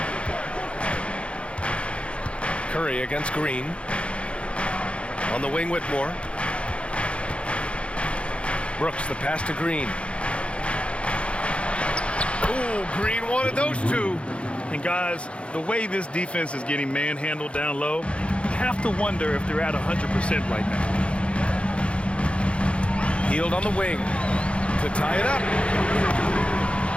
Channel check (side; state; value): right; late; 0.060 ms